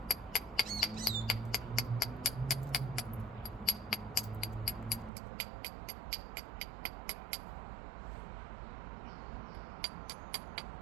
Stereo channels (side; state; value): left; drops out; at 5.1 s